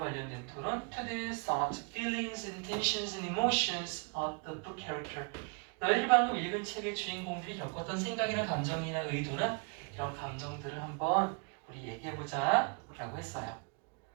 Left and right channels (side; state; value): left; quieter; 34.8 dB